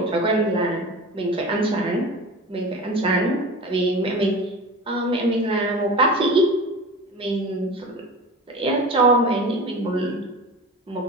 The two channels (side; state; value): both; normal; correlation 0.33